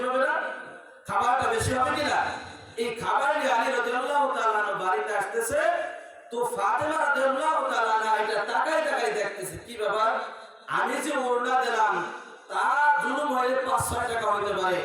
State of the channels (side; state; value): both; identical; correlation 1.00